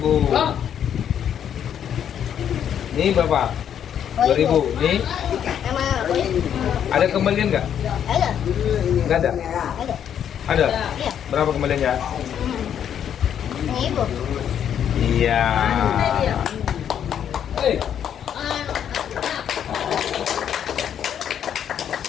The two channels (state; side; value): quieter; right; 9.1 dB